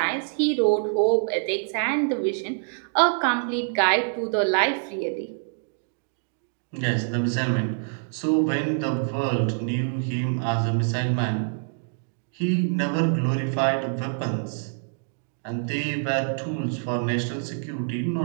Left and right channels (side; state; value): left; silent; digital silence